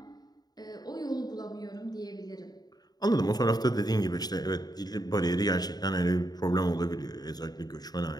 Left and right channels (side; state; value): right; late; 0.19 ms